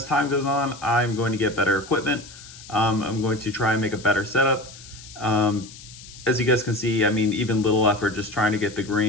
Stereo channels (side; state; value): left; noise; hiss, 18 dB below the sound